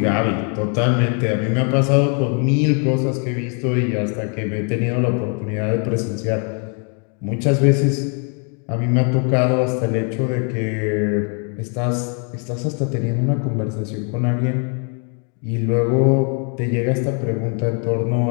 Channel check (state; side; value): quieter; right; 39.5 dB